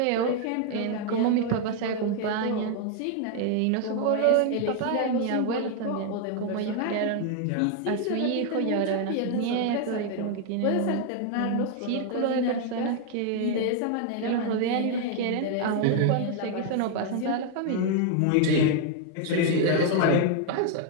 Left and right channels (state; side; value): different; both; correlation 0.00